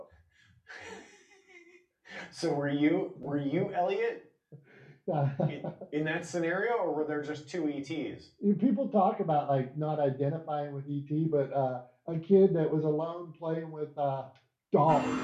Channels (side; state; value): both; identical; correlation 1.00